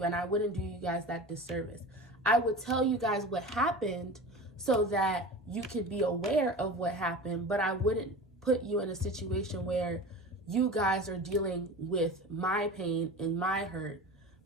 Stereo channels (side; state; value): both; normal; correlation 0.33